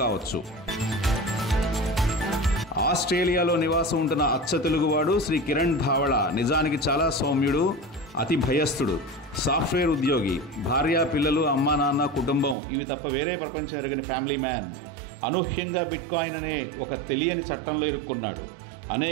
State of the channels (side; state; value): left; drops out; at 12.6 s